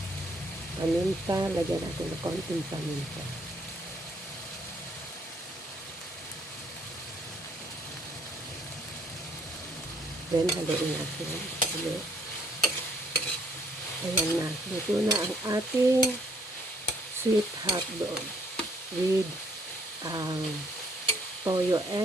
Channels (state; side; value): normal; both; correlation 0.66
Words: Paminta, lagyan natin ng konting paminta. Then, haluin natin ulit. Ayan na. Luto na ang ating sweet hotdog with toyo